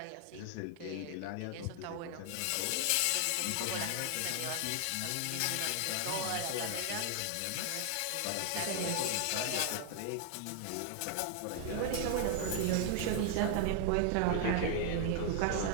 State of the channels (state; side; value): different; both; correlation 0.00